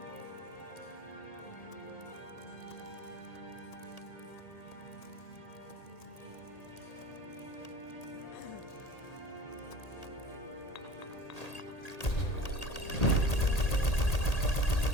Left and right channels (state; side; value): late; right; 1.8 ms